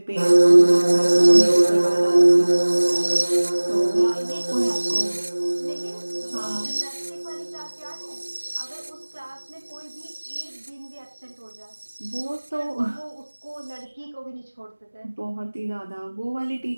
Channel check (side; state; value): both; inverted; correlation -1.00